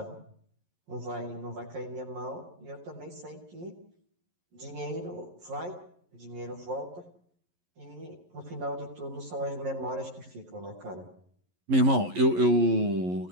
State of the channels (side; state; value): left; late; 11 ms